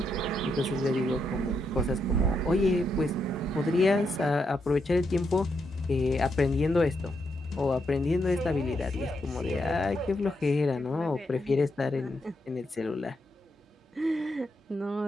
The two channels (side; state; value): both; normal; correlation 0.81